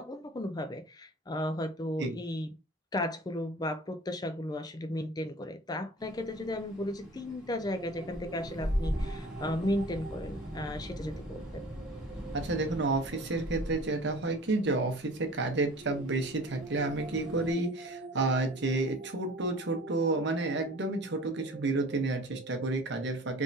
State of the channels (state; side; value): normal; both; correlation 0.43